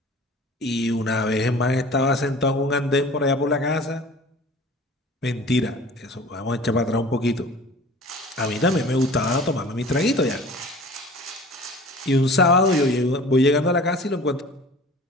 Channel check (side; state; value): both; normal; correlation 0.44